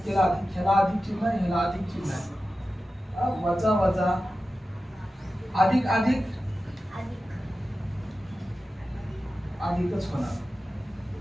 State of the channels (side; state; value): both; normal; correlation 0.93